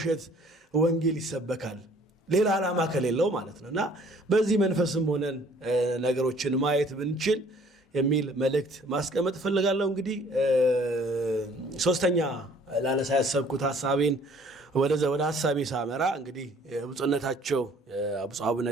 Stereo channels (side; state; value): both; normal; correlation 0.56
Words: ወንጌል ይሰበካል? ሌላ ዓላማ ከሌለው ማለት ነው እና በዚህ መንፈስም ሆነን ነገሮችን ማየት ብንችል የሚል መልእክት ማስቀመጥ እፈልጋለሁ። እንግዲህ ሶስተኛ ላነሳ ያሰብኩት ሐሳቤን ወደ ሐሳቤ ሳመራ እንግዲህ ብፁዕነታቸው ብፁዕ አቡነ